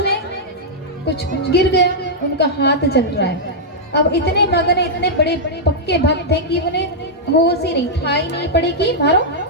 कुछ गिर गए, उनका हाथ जल रहा है। अब इतने मगन इतने बड़े पक्के भक्त थे कि उन्हें होश ही नहीं, ठाई नहीं पड़ी कि मारो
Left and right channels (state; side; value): normal; both; correlation -0.07